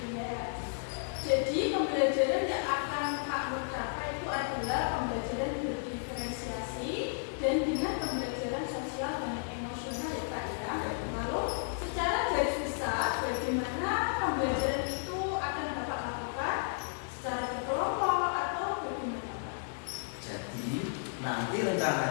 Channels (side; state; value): right; silent; digital silence